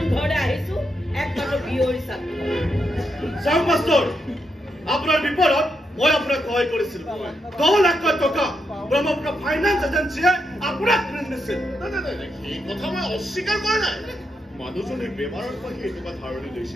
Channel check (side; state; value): both; normal; correlation 0.82